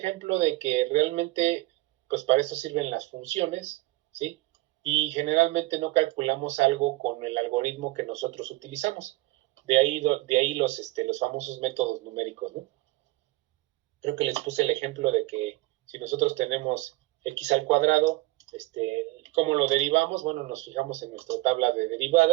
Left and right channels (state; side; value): quieter; left; 20.0 dB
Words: de que realmente, pues para eso sirven las funciones, ¿sí? Y generalmente no calculamos algo con el algoritmo que nosotros utilizamos. De ahí los famosos métodos numéricos, ¿no? Creo que les puse el ejemplo de que si nosotros tenemos x al cuadrado, ¿cómo lo derivamos? Bueno, nos fijamos en nuestra tabla de